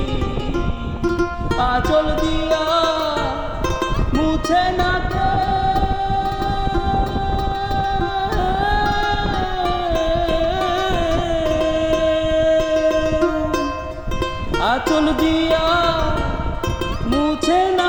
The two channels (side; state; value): both; identical; correlation 1.00